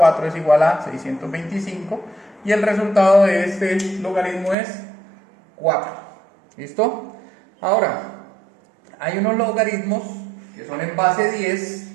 es igual a 625, y el resultado de este logaritmo es 4. ¿Listo? Ahora, hay unos logaritmos que son en base 10,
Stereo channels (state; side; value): drops out; left; at 4.5 s